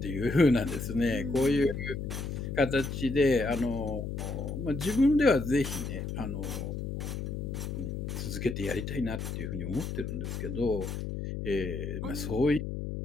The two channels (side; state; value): left; noise; hum, 4 dB below the sound